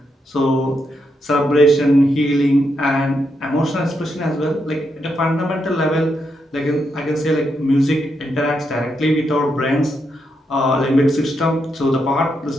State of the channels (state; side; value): normal; both; correlation 0.81